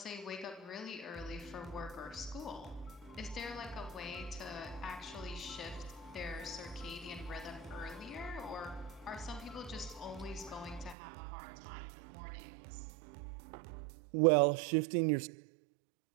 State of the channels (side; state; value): left; drops out; at 11.0 s